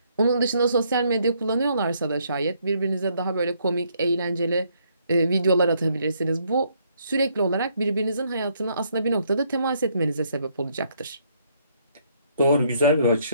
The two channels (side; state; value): both; inverted; correlation -0.70